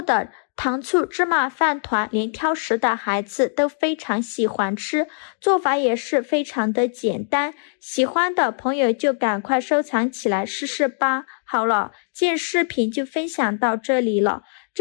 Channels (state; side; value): silent; right; digital silence